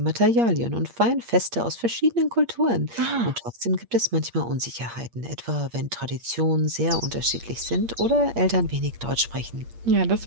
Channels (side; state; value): left; late; 8.6 ms